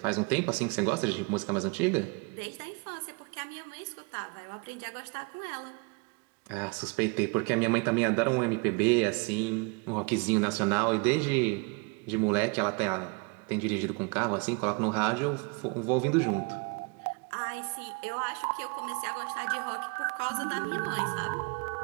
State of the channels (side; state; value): left; quieter; 32.0 dB